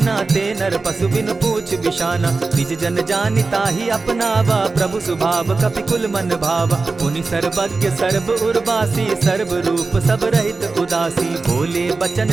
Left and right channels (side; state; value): left; quieter; 3.9 dB